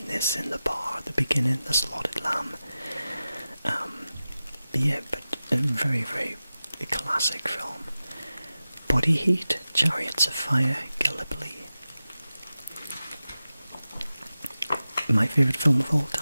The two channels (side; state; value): both; inverted; correlation -0.94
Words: the bar at the beginning, The Slaughtered Lamb. Yeah, but a very, very classic film. Body Heat, Chariots of Fire, Gallipoli. My favourite film of all